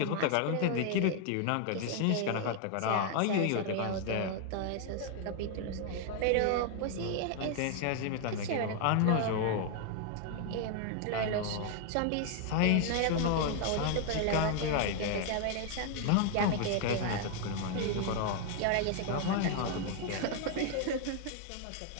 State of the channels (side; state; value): both; different; correlation 0.00